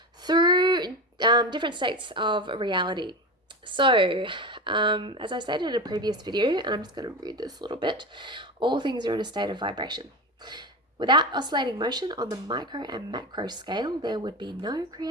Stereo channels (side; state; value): both; normal; correlation 0.23